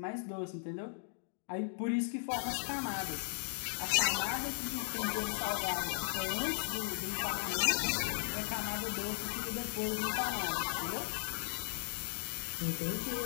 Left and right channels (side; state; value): right; silent; digital silence